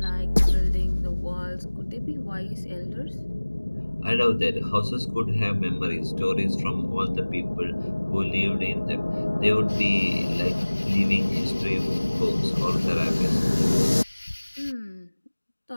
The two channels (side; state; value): both; inverted; correlation -1.00